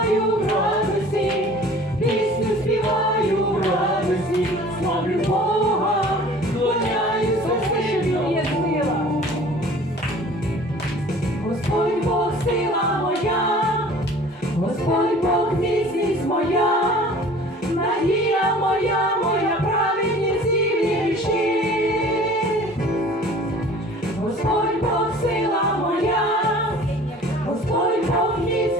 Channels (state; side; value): normal; both; correlation 0.47